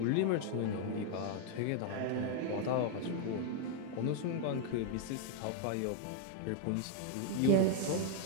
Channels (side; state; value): both; different; correlation 0.00